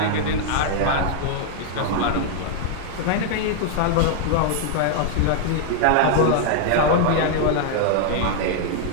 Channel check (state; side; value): different; both; correlation 0.00